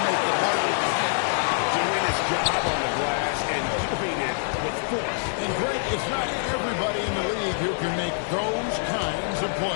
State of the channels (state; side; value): silent; right; digital silence